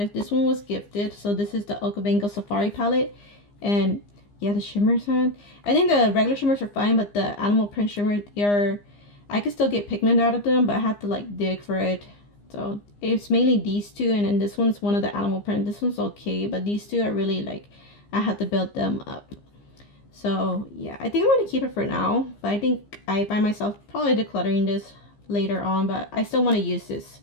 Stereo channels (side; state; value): right; late; 15 ms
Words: This one was gifted, so this is the Okavango Safari palette. And yeah, the shimmers, man, I think the regular shimmers are fine, but the animal print shimmers, I could still get pigment out of them, but I had to like dig for it. So it's mainly these two, and then this one's one of the animal print. This one's okay, but these two are really like, I had to build them up. So yeah, I think I'm going to keep it for now. But I think I find myself probably decluttering this later on. But I still want to use